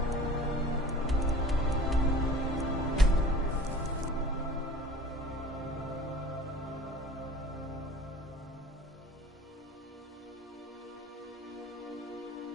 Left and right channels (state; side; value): normal; both; correlation 0.45